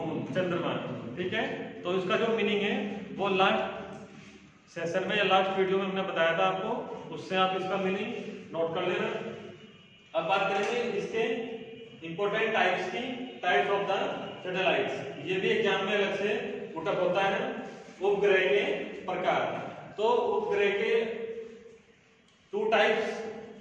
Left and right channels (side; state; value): both; identical; correlation 1.00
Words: चंद्रमा, ठीक है। तो इसका जो मीनिंग है वो लास्ट सेशन में या लास्ट वीडियो में हमने बताया था आपको, उससे आप इसका मीनिंग नोट कर लेना। अब बात करेंगे इसके इंपॉर्टेंट टाइप्स की, टाइप्स ऑफ द सैटेलाइट्स। ये भी एग्जाम में अलग से उठक होता है, उपग्रह के प्रकार। तो उपग्रह के 2 टाइप्स